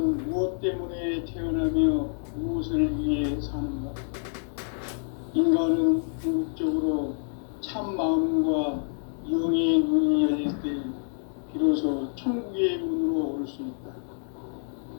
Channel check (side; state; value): right; silent; digital silence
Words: 무엇 때문에 태어나며 무엇을 위해 사는가? 인간은 궁극적으로 참 마음과 영의 눈이 열릴 때 비로소 천국의 문으로 올 수 있다.